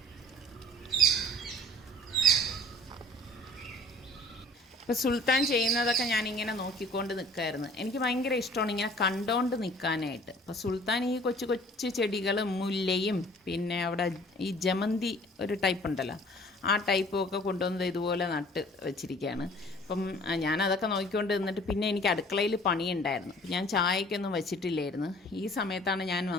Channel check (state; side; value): normal; both; correlation 0.51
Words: ഇപ്പോൾ സുൽത്താൻ ചെയ്യുന്നതൊക്കെ ഞാനിങ്ങനെ നോക്കിക്കൊണ്ട് നിൽക്കുമായിരുന്നു. എനിക്ക് ഭയങ്കര ഇഷ്ടമാണ് ഇങ്ങനെ കണ്ടോണ്ട് നിൽക്കാനായിട്ട്. അപ്പോൾ സുൽത്താൻ ഈ കൊച്ചു കൊച്ചു ചെടികളും മുല്ലയും പിന്നെ അവിടെ ഈ ജമന്തി ഒരു ടൈപ്പ് ഉണ്ടല്ലോ, ആ ടൈപ്പും ഒക്കെ കൊണ്ടുവന്നത് ഇതുപോലെ നട്ട് വെച്ചിരിക്കുകയാണ്. അപ്പം ഞാനതൊക്കെ നോക്കിക്കൊണ്ട് നിന്നിട്ട് പിന്നെ എനിക്ക് അടുക്കളയിൽ പണിയുണ്ടായിരുന്നു. ഞാൻ ചായക്കൊന്നും വെച്ചിട്ടില്ലായിരുന്നു. ഈ സമയത്താണ് ഞാൻ